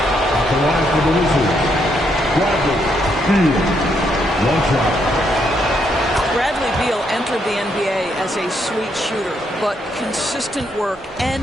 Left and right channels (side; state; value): both; normal; correlation 0.76